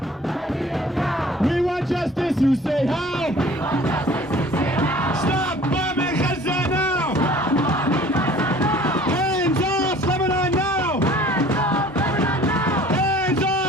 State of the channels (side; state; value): both; normal; correlation 0.50